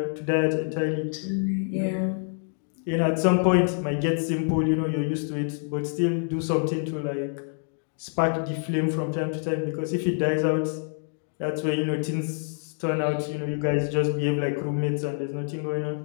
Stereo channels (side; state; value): right; silent; 57 dB below the other